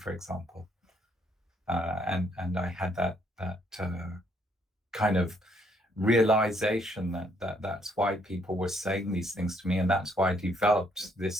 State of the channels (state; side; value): normal; both; correlation 0.69